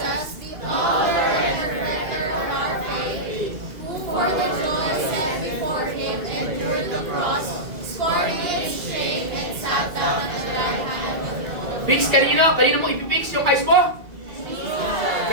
Fix kanino? Kanino mo ipipix yung eyes mo?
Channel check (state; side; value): late; left; 2.3 ms